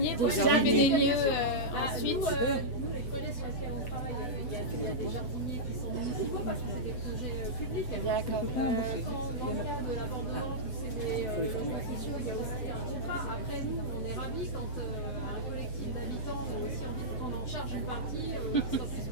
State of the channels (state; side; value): late; right; 8.0 ms